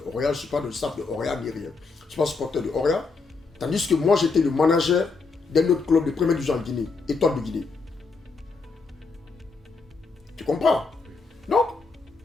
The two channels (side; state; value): right; quieter; 4.2 dB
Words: Orient, je ne suis pas de staff de Orient ni rien. Je ne suis pas supporter de Orient. Tandis que moi, j'étais le manager d'un autre club de première division en Guinée, Étoile de Guinée. Tu comprends? Donc,